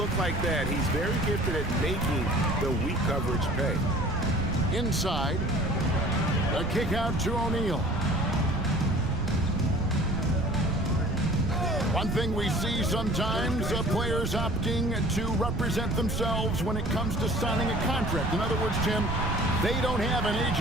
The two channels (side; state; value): right; noise; rumble, 3 dB below the sound